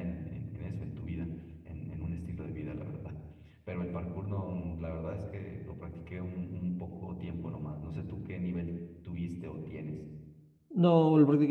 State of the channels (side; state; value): both; identical; correlation 1.00